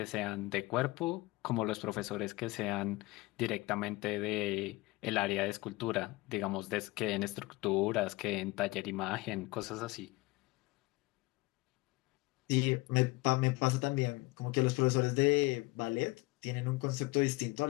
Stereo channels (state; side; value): quieter; right; 21.9 dB